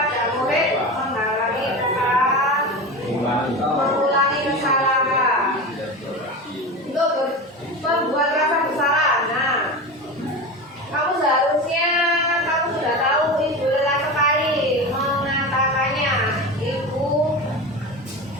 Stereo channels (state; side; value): normal; both; correlation 0.26